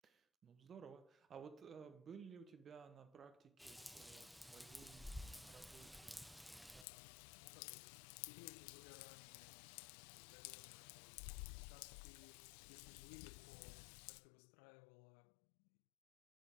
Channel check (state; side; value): drops out; right; at 6.9 s